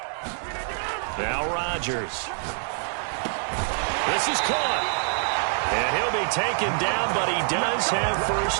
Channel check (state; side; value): silent; left; 61 dB below the other